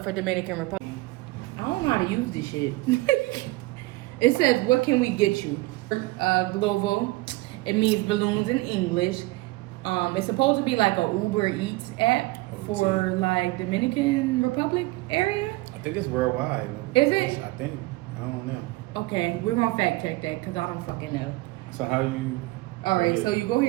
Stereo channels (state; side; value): quieter; left; 21.1 dB